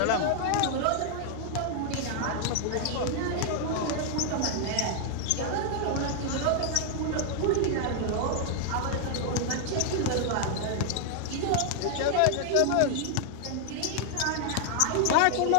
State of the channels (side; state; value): both; different; correlation 0.00